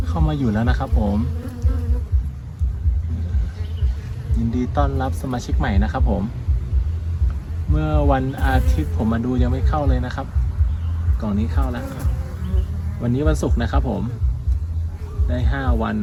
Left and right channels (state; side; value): identical; both; correlation 1.00